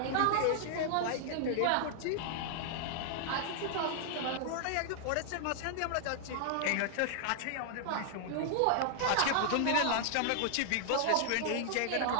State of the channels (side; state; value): both; different; correlation -0.01